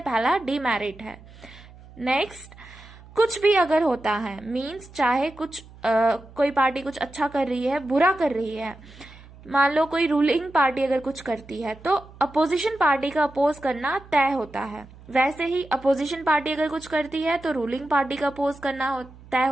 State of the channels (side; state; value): right; noise; hum, 21 dB below the sound